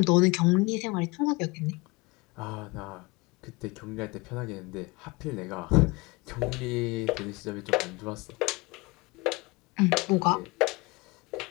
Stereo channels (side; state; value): right; quieter; 24.4 dB